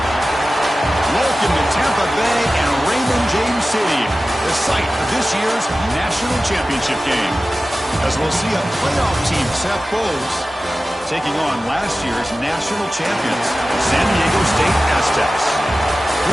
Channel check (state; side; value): normal; both; correlation 0.95